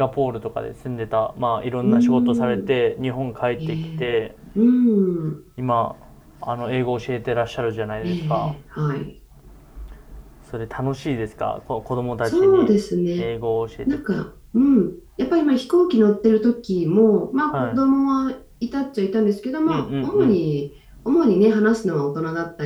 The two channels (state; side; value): identical; both; correlation 1.00